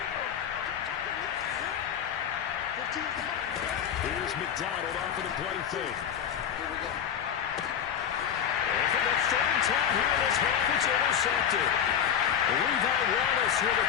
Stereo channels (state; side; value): quieter; right; 8.7 dB